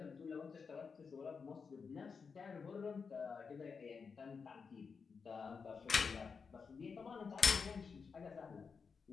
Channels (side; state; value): right; quieter; 5.5 dB